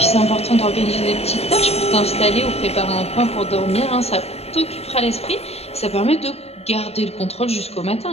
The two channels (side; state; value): right; late; 0.30 ms